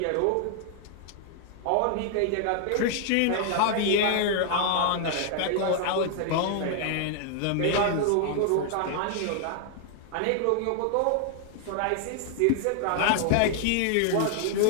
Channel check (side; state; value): both; different; correlation 0.00